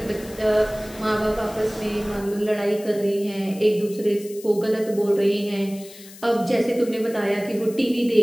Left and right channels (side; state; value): left; noise; hiss, 19 dB below the sound